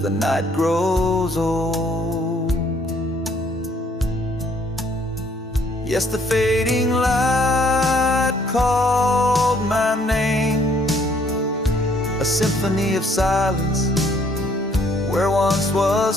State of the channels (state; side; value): normal; both; correlation 0.64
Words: the night grows old. Yes, the fading light called my name, a symphony of silence where once